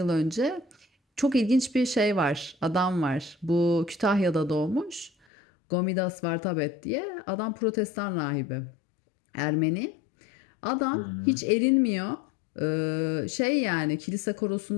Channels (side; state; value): right; drops out; at 5.1 s